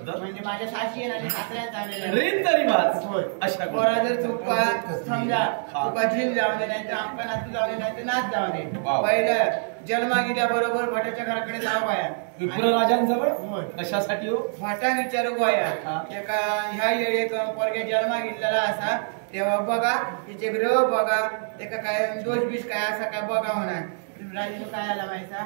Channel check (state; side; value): silent; left; digital silence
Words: म्हणजे माझ्या साशी आणि सासऱ्यांचा रीत तरी वाच होय अशा पोरा जर चुका समजा चुका झील जाऊ दे, नाही तर आमका नातू जाऊ दे, नाही तर नाच जाऊ दे. वाव. पहिलं जन्मा गेल्याबरोबर भटाच्या घराकडे जावं बाया. विप्रराजांजवळ होय. कशासाठी हो? फाटा विचारू बाया. हा. एका ह्या येळी पोरग्या जन्मा गेलेला असा तेव्हा बघा तिचे ग्रह बघा, त्याका काय दोष बीस काय असा काय बघा होणार. राजू काय आला माहिती,